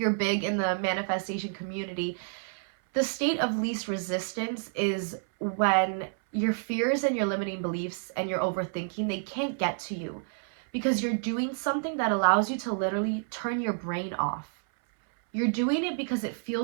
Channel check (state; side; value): silent; left; 58 dB below the other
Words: big in the manifestation community, the state of least resistance is when your fears and your limiting beliefs and your overthinking, they can't get to you because you're doing something that allows you to literally turn your brain off. You're doing it because it